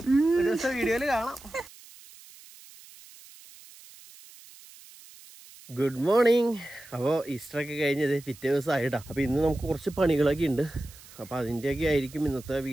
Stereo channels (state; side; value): noise; right; hiss, 21 dB below the sound